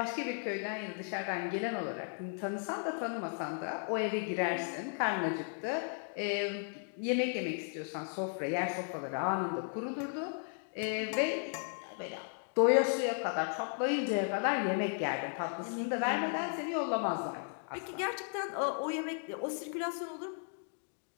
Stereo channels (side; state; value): right; silent; 54 dB below the other